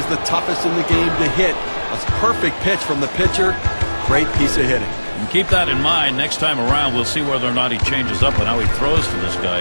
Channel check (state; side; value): inverted; both; correlation -1.00